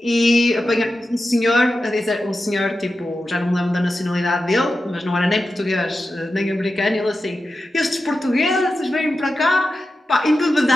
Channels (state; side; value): normal; both; correlation 0.91